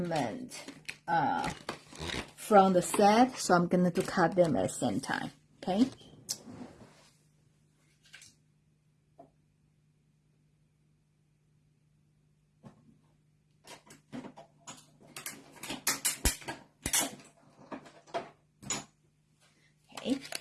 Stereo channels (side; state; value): both; identical; correlation 1.00